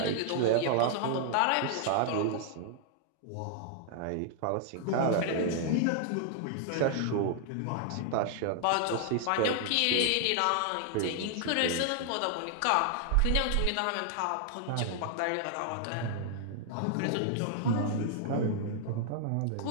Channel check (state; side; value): different; both; correlation 0.00